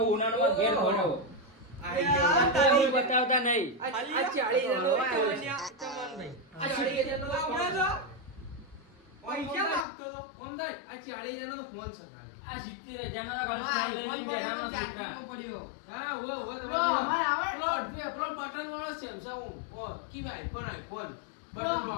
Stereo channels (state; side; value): drops out; right; at 9.9 s